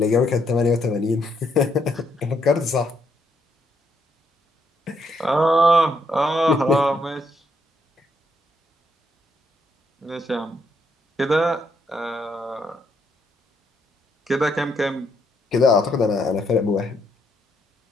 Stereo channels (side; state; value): both; normal; correlation 0.75